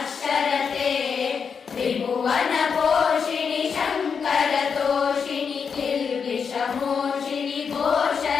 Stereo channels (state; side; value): quieter; right; 6.2 dB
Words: त्रिभुवनपोषिणि शङ्करतोषिणि किल्बिषमोषिणि